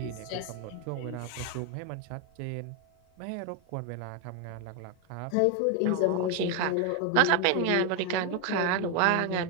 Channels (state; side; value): different; both; correlation 0.01